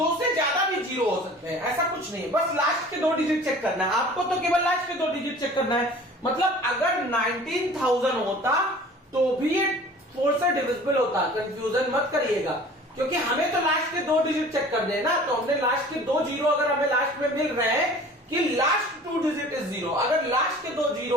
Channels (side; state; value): both; normal; correlation 0.45